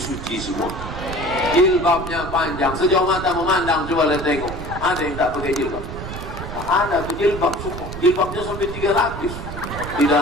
semua. Jilbabnya panjang, sejauh mata memandang, coba lihat tengok. Ada yang tak pakai jilbab? Ada jilbab semua. Jilbabnya sampai 3 lapis. Di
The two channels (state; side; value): noise; right; rumble, 9 dB below the sound